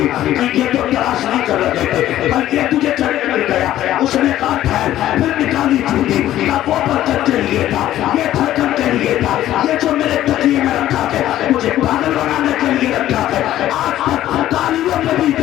ये तो तलाश नहीं कर रहे थे, बल्कि तुझे चढ़ मिल गया। उसने कहा ठहर, फिर निकाली जूती, वो बरकत के लिए था, ये धड़कन के लिए था, ये जो मेरे तकिए में रखा है मुझे पागल बनाने के लिए रखा है। आज तक तालियों में भी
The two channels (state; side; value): quieter; right; 13.2 dB